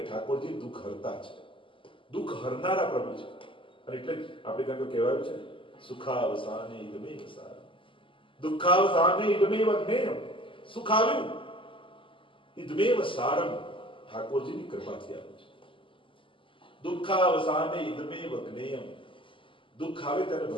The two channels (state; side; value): late; right; 0.25 ms